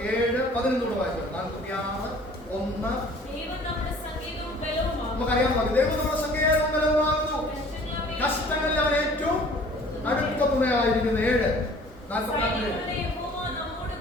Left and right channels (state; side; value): normal; both; correlation 0.51